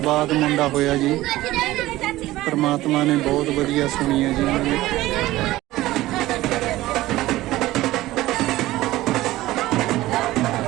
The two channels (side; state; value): left; quieter; 16.8 dB